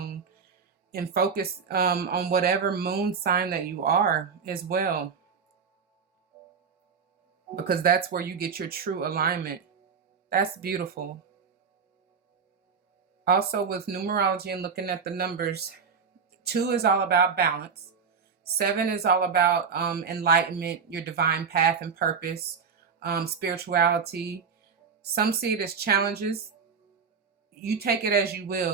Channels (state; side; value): quieter; left; 6.0 dB